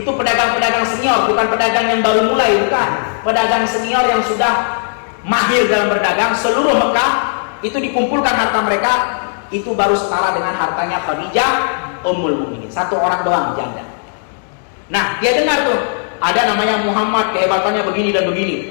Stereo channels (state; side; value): silent; right; digital silence